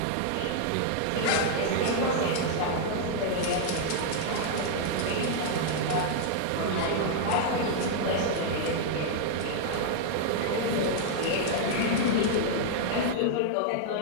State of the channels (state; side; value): different; both; correlation -0.01